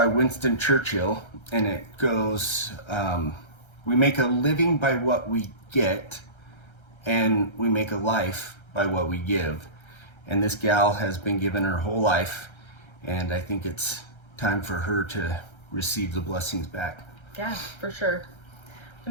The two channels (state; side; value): late; right; 1.3 ms